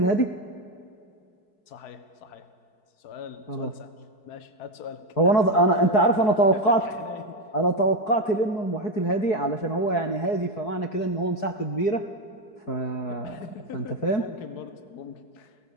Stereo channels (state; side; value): late; right; 4.7 ms